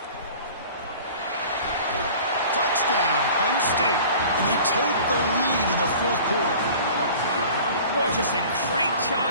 Touchdown! touchdown, Penn State. And they take the lead in the fourth quarter. Boy, just a great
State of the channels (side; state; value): both; inverted; correlation -0.44